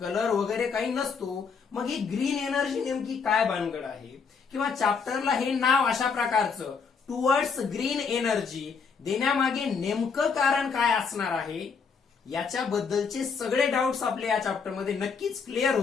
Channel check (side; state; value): right; quieter; 5.6 dB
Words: वगैरे काही नसतो. मग ही ग्रीन एनर्जी नेमकी काय भानगड आहे, किंवा चॅप्टरला हे नाव अशा प्रकारचं टुवर्ड्स ग्रीन एनर्जी देण्यामागे नेमकं कारण काय असणार आहे, याच्याबद्दलचे सगळे डाऊट्स आपल्या या चॅप्टरमध्ये नक्कीच क्लिअर